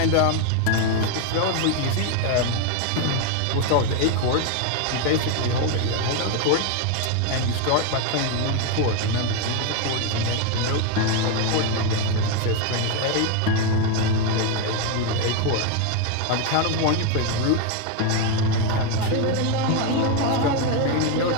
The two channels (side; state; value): both; different; correlation 0.02